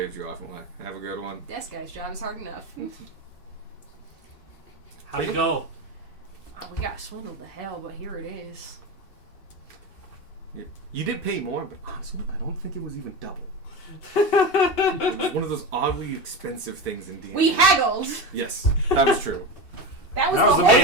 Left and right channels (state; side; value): late; right; 2.6 ms